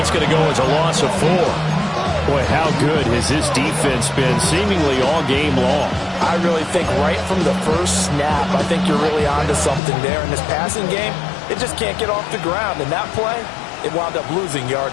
going to go as a loss of 4. Boy, how good has this defense been seemingly all game long? I really think right from the first snap, I think you're really onto something there. In this passing game, it just can't get off the ground. In that play, it wound up losing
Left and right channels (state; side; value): drops out; right; at 9.8 s